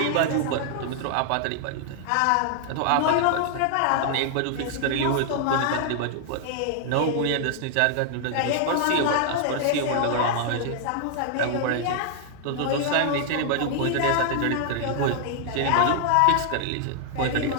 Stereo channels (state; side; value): different; both; correlation 0.00